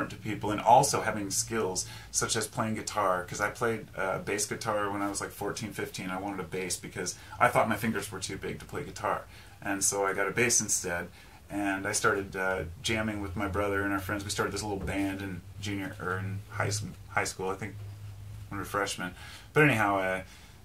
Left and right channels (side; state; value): both; identical; correlation 1.00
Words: to people, and also having skills such as playing guitar, because I played bass guitar when I was like 14, 15. I wanted a bass because I thought my fingers were too big to play guitar, and so I got a bass instead. And I started jamming with my brother and our friends. We started this little band in high school, I think, when we were freshmen. But anyhow,